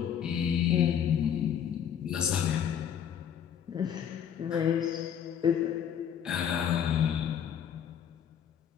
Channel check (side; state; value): right; quieter; 8.9 dB